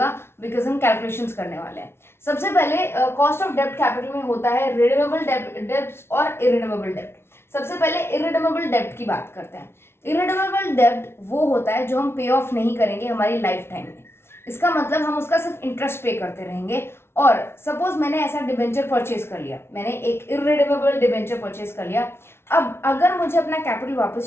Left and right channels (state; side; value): late; right; 0.12 ms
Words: बिकॉज हम कैलकुलेशंस करने वाले हैं। सबसे पहले कॉस्ट ऑफ डेब्ट कैपिटल में होता है रिडीमेबल डेब्ट्स और इरिडीमेबल डेब्ट। सबसे पहले इरिडीमेबल डेब्ट की बात करते हैं। इरिडीमेबल डेब्ट वो होता है जो हम पे ऑफ नहीं करेंगे हमारी लाइफ टाइम में। इसका मतलब हम उसका सिर्फ इंटरेस्ट पे करते रहेंगे। और सपोज मैंने ऐसा डिबेंचर परचेज कर लिया, मैंने एक इरिडीमेबल डिबेंचर परचेज कर लिया। अब अगर मुझे अपना कैपिटल